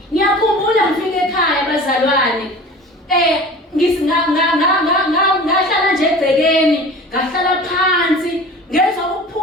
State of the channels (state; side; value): normal; both; correlation 0.39